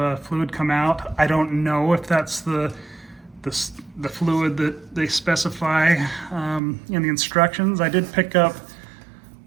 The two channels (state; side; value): drops out; left; at 6.6 s